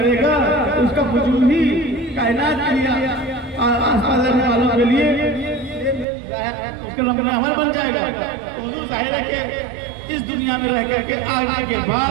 گا اس کا وجود ہی کائنات کے لیے، آس پاس رہنے والوں کے لیے اس کے رب عمل بن جائے گا. حضور ظاہر ہے کہ اس دنیا میں رہ کر کے آنے کے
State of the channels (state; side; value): drops out; left; at 6.1 s